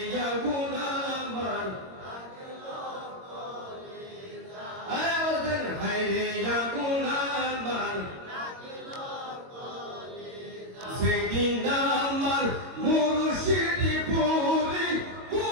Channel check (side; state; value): left; late; 22 ms